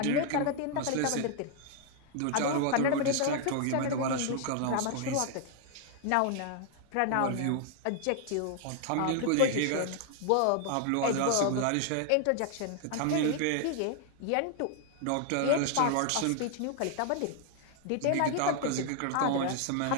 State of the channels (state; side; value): different; both; correlation 0.00